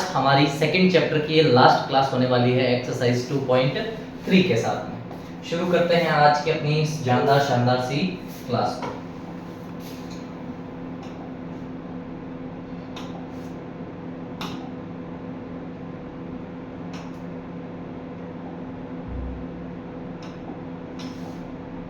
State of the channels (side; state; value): both; identical; correlation 1.00